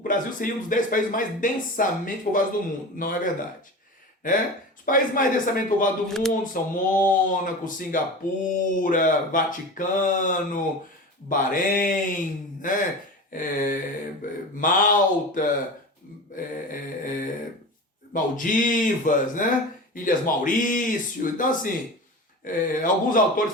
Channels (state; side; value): normal; both; correlation 0.30